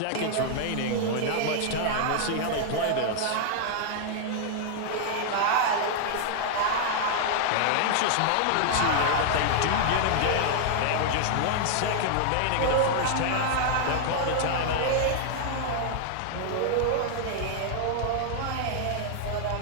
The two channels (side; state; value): both; different; correlation 0.00